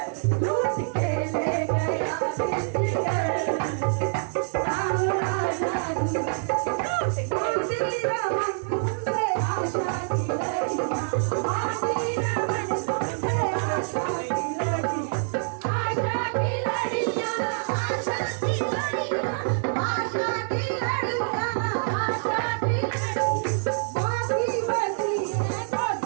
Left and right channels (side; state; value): left; silent; digital silence